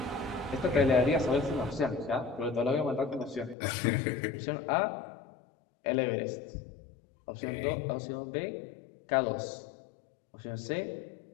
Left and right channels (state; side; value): drops out; right; at 3.6 s